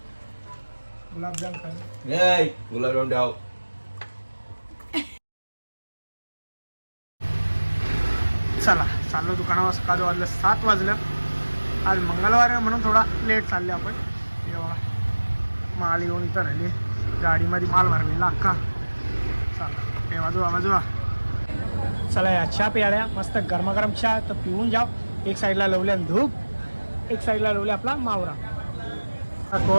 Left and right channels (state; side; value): inverted; both; correlation -1.00